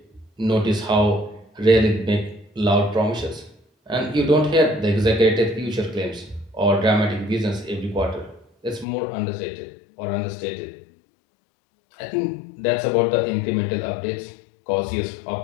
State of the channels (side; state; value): right; drops out; at 8.8 s